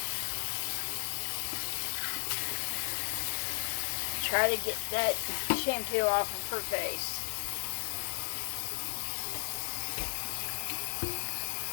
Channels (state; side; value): silent; right; digital silence